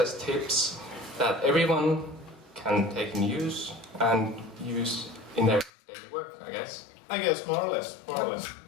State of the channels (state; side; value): drops out; right; at 5.7 s